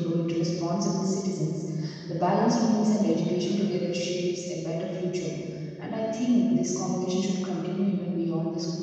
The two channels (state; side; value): identical; both; correlation 1.00